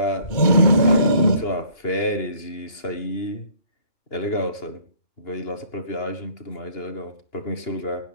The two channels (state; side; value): late; right; 2.9 ms